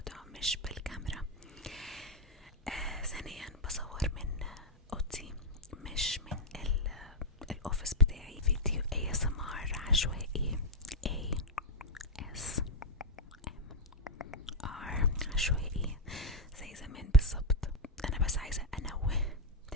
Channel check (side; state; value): both; normal; correlation 0.01